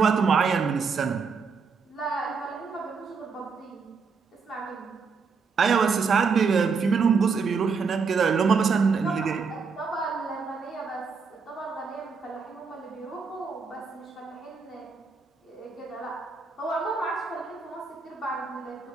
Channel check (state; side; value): quieter; left; 5.2 dB